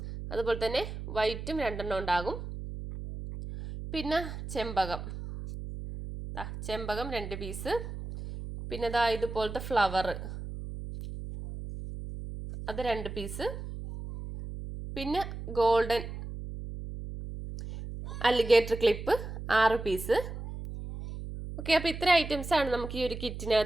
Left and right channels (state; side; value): noise; right; hum, 8 dB below the sound